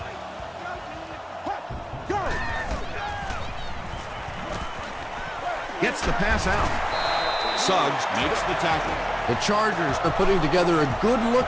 Hot. Go. Gets the pass out. Suggs makes the tackle. The Chargers are putting together a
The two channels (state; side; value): identical; both; correlation 1.00